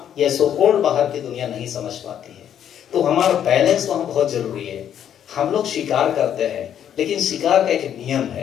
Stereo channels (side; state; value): right; quieter; 9.7 dB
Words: ये सो कॉल्ड बाहर की दुनिया नहीं समझ पाती है। तो हमारा बैलेंस वहां बहुत जरूरी है। हम लोग शिकार करते हैं, लेकिन शिकार का एक नियम